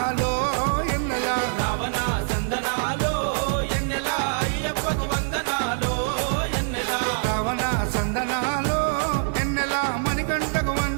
ఎన్నెల రావణ సందనాలో ఎన్నెల అయ్యప్పకు వందనాలో ఎన్నెల రావణ సందనాలో ఎన్నెల మణికంఠకు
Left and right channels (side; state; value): left; silent; digital silence